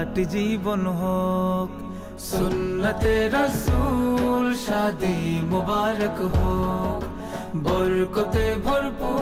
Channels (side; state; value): both; identical; correlation 1.00